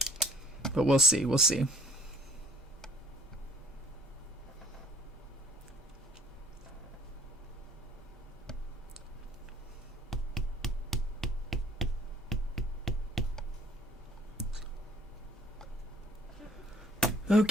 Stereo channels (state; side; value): normal; both; correlation 0.57